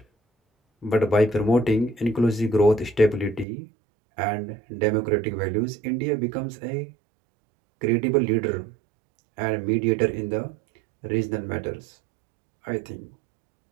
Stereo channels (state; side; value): drops out; left; at 3.5 s